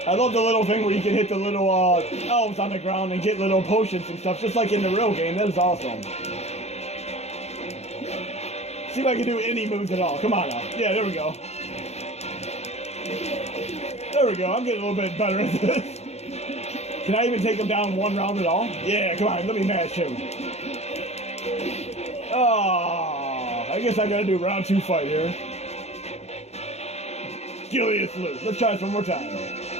I love the little thing where you can hit the little elves on the ground and get little potions and stuff, just like in the real game. That is awesome. See if I can do any moves at all. Come on now. Yeah, there we go. There we go. I'm getting a little bit better at this. Can I even take him down one round at all? Yeah, come on. Let me mash him. Oh, I guess I gotta do round 2 fight here. Gilius loose. Let's try this one more time.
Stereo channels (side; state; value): right; late; 0.31 ms